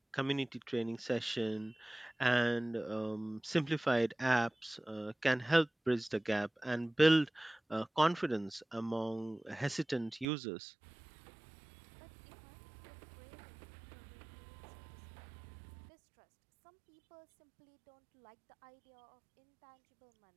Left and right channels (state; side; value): drops out; left; at 10.2 s